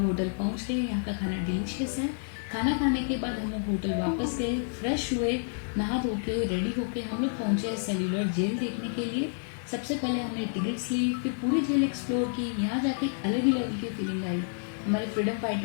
होटल पहुंच गए, यहाँ का खाना डिलीशियस है। खाना खाने के बाद हम लोग होटल वापस गए, फ्रेश हुए, नहा धो के रेडी होके हम लोग पहुंचे सेल्यूलर जेल देखने के लिए। सबसे पहले हमने टिकट्स ली, फिर पूरी जेल एक्सप्लोर की। यहाँ जाके अलग ही लेवल की फीलिंग आई। हमारे फ्रीडम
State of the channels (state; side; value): silent; right; digital silence